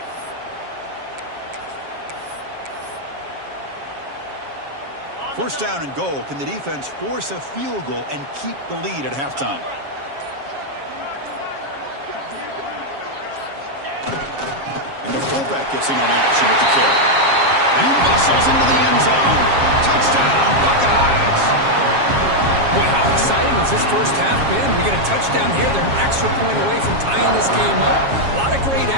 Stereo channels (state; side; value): late; left; 7.3 ms